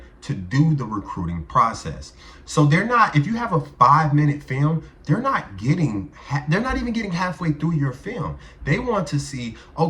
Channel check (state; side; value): identical; both; correlation 1.00